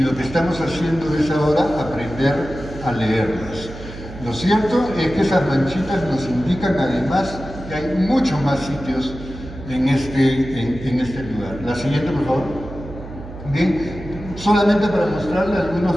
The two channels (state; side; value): noise; right; hum, 13 dB below the sound